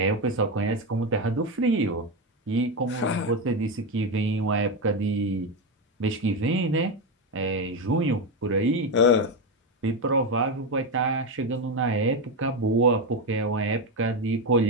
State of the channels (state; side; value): normal; both; correlation 0.12